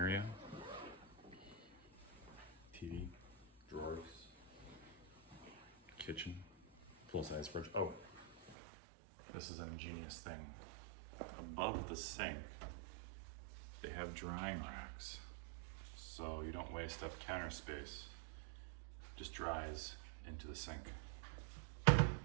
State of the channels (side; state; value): left; drops out; at 8.6 s